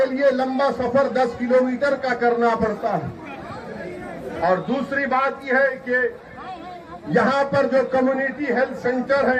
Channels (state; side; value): identical; both; correlation 1.00